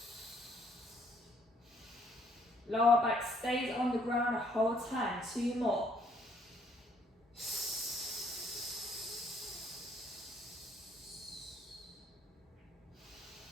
Lower back stays on the ground the whole time. 2 more.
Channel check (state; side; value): normal; both; correlation 0.65